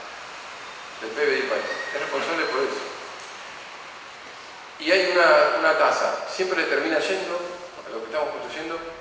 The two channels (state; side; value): identical; both; correlation 1.00